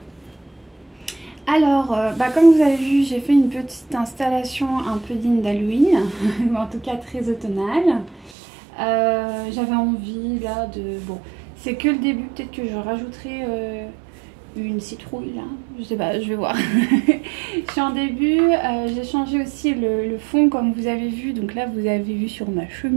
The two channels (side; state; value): left; drops out; at 8.3 s